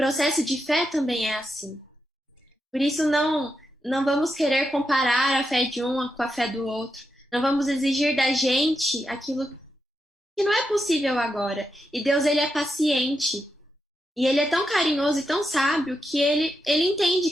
de fé também é assim. Por isso não vamos querer comparar a fé de um com a fé do outro. Não vamos exigir da gente aquilo que não é possível agora. E Deus, ele é paciente. E ele é tão carinhoso e tão sábio que ele entende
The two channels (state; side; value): normal; both; correlation 0.85